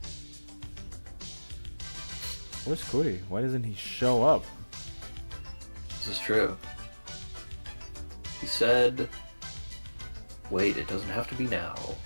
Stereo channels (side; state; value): both; inverted; correlation -1.00